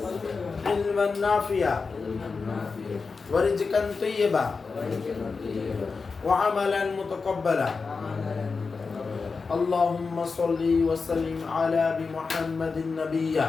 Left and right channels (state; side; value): quieter; right; 4.6 dB